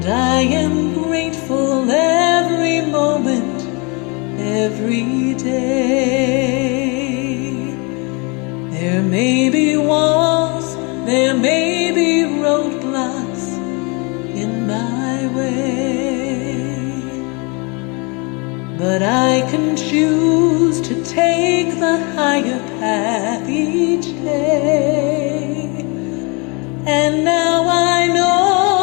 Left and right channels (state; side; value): quieter; right; 30.8 dB